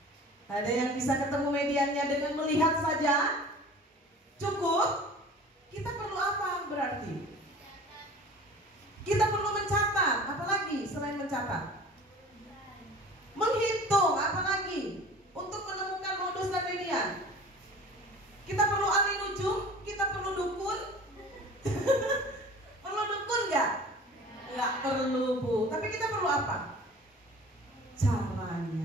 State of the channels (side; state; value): both; normal; correlation 0.43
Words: ada yang bisa ketemu mediannya dengan melihat saja cukup? Kita perlu apa berarti? Kita perlu mencatat, apalagi selain mencatat? Menghitung, apalagi untuk menemukan modus dan median. Kita perlu ahli nujum, kita perlu dukun. Perlu dukun nggak? Nggak perlu, Bu. Tapi kita perlu apa?